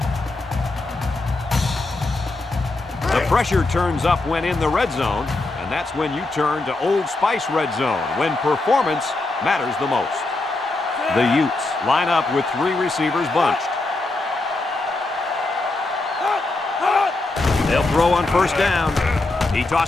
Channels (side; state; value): right; quieter; 3.1 dB